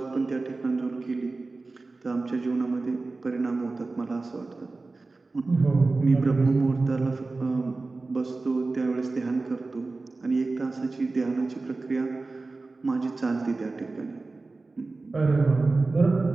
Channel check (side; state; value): left; quieter; 3.5 dB